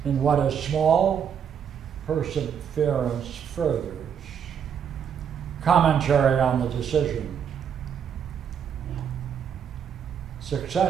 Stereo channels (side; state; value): left; quieter; 7.9 dB